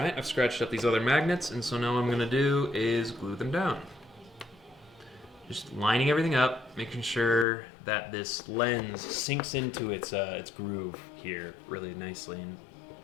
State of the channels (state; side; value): drops out; right; at 7.5 s